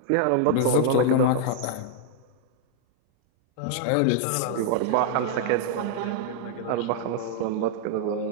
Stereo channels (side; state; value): both; different; correlation 0.00